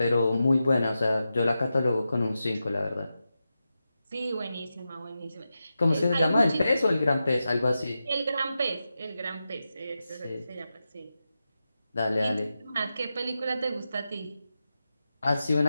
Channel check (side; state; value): both; inverted; correlation -0.90